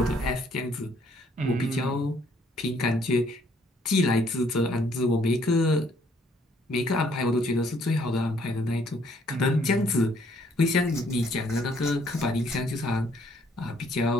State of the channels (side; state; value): both; normal; correlation 0.65